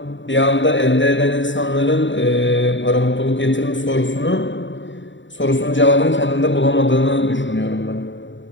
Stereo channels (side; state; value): right; late; 0.54 ms